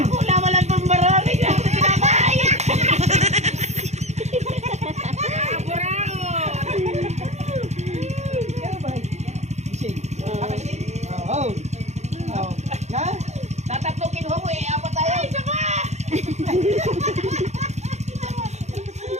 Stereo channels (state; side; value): late; left; 0.33 ms